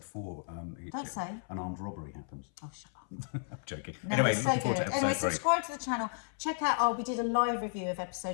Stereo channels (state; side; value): silent; right; 55 dB below the other